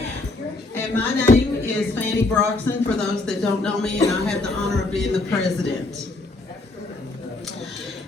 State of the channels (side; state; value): right; quieter; 3.1 dB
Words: And my name is Fanny Broxson, for those that don't know me, and I have the honor of being the president.